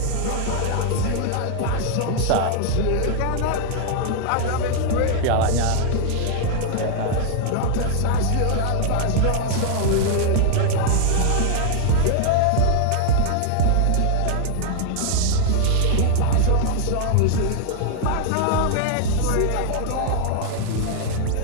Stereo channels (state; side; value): different; both; correlation 0.00